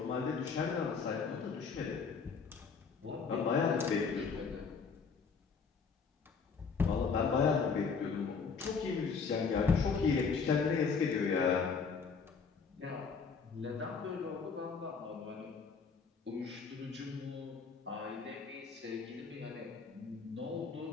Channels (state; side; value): quieter; right; 5.4 dB